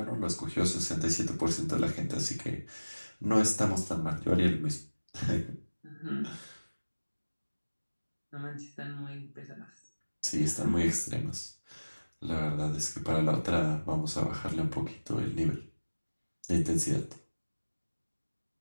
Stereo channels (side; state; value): both; inverted; correlation -1.00